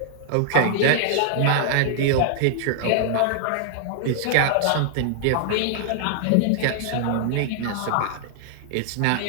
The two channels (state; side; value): different; both; correlation -0.01